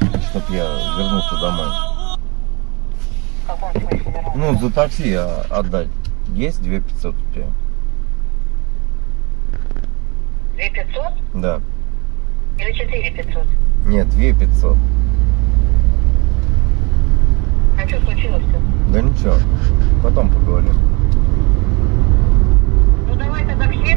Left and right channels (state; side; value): quieter; left; 28.2 dB